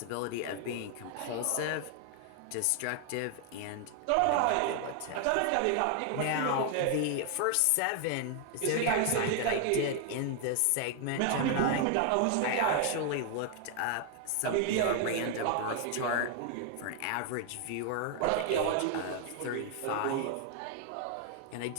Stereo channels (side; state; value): both; different; correlation 0.00